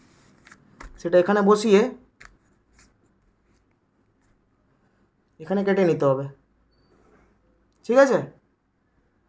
বসিয়ে এখানে কেটে নিতে হবে। ঠিক আছে,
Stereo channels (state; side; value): identical; both; correlation 1.00